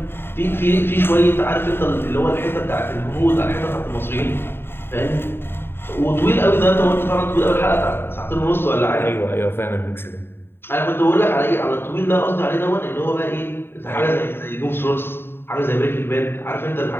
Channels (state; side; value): late; right; 0.11 ms